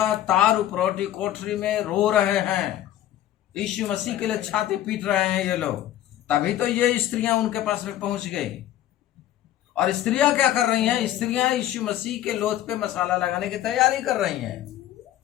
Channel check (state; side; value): quieter; right; 12.7 dB